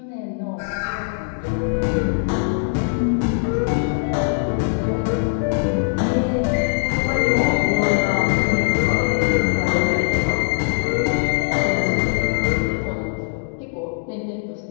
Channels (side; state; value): right; silent; digital silence